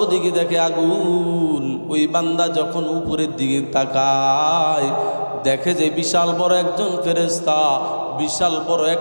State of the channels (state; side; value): inverted; both; correlation -1.00